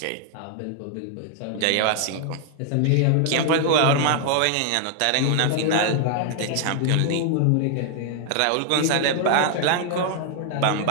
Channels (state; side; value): different; both; correlation 0.00